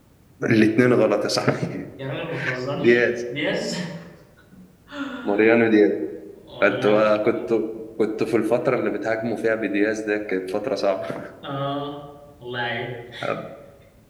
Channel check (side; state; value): both; identical; correlation 1.00